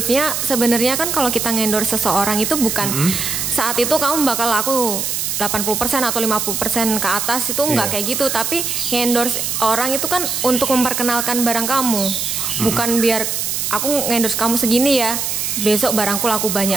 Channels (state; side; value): noise; right; hiss, 1 dB below the sound